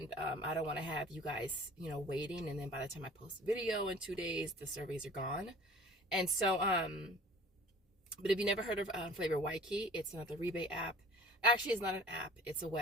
I don't want to have you guys, waiting, and then by the time I post the video in 2 days, the surveys are gone. And so, but if you never heard of Flavor Y Key, it's another rebate app. Actually, it's not an app, it's a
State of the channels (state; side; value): normal; both; correlation 0.46